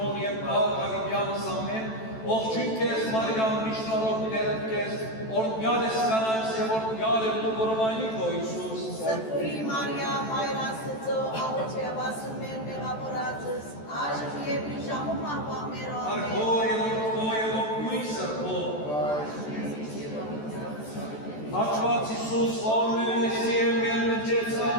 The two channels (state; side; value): late; right; 14 ms